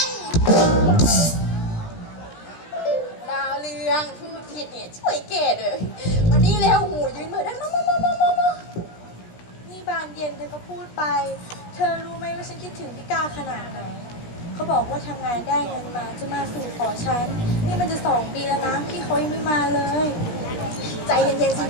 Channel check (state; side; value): late; right; 16 ms